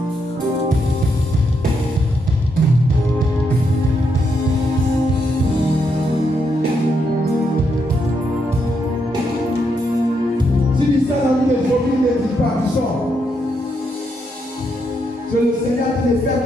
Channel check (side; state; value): both; normal; correlation 0.79